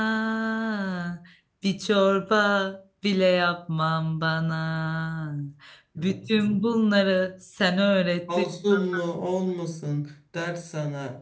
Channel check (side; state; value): both; identical; correlation 1.00